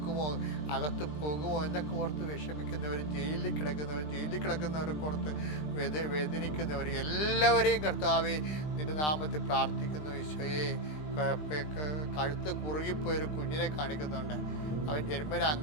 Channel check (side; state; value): right; late; 20 ms